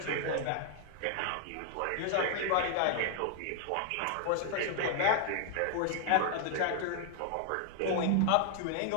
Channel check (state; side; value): different; both; correlation 0.00